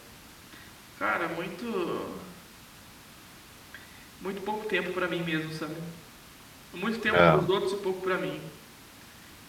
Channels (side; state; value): both; identical; correlation 1.00